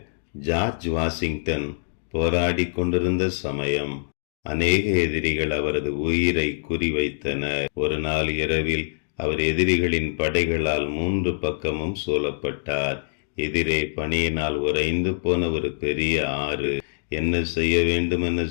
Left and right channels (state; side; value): silent; right; digital silence